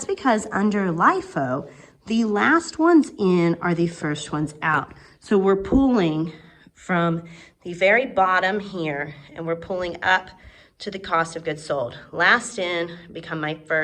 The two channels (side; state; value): both; identical; correlation 1.00